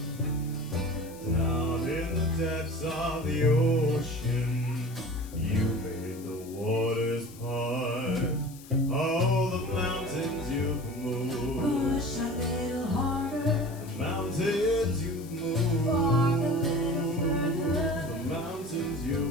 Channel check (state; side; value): noise; left; hiss, 20 dB below the sound